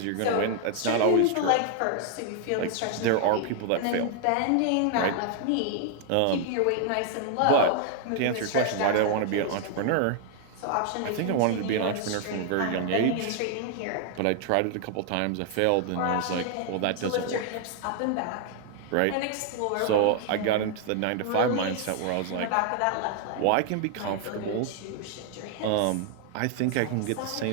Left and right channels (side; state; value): both; different; correlation 0.00